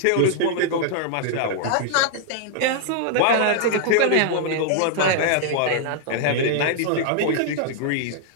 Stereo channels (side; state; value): both; different; correlation -0.01